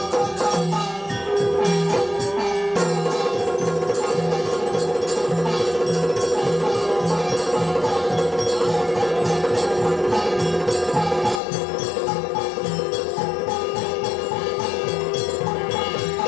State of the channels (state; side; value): drops out; right; at 11.4 s